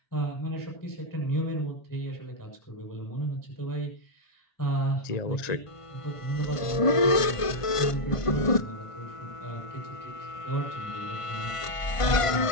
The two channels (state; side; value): late; right; 1.5 ms